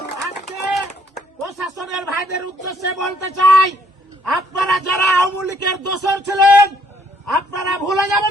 আজকে প্রশাসনের ভাইদের উদ্দেশ্যে বলতে চাই, আপনারা যারা আওয়ামী লীগের দোসর ছিলেন আপনারা ভুলে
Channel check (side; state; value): both; normal; correlation 0.66